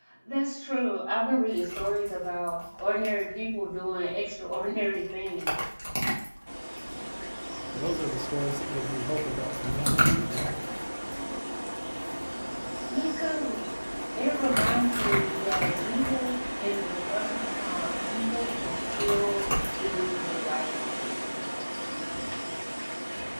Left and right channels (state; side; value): inverted; both; correlation -1.00